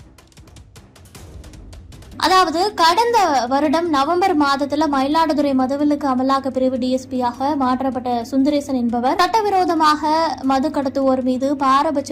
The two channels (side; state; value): both; identical; correlation 1.00